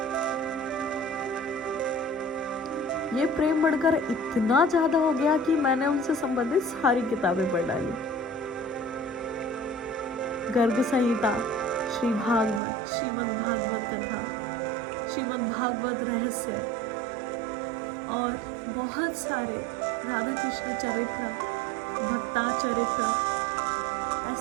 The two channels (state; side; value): drops out; left; at 12.6 s